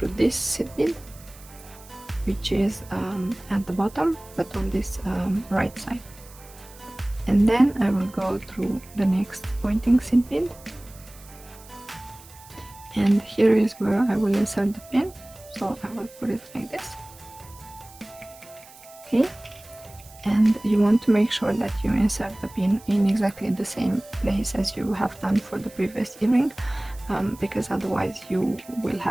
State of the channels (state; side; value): noise; right; hiss, 22 dB below the sound